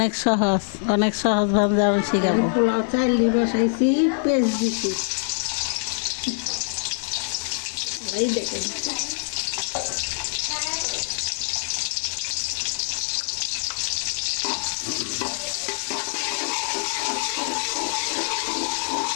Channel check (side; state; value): right; silent; digital silence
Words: সহজ ভাবে আমি শিখাবো। পোলাও চাইলি বসাইছি, পেঁয়াজ দিছি, এই দেখেন